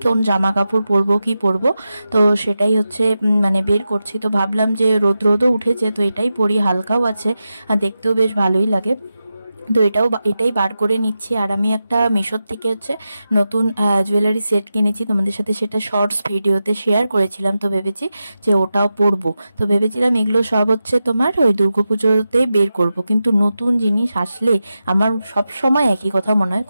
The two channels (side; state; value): both; inverted; correlation -0.91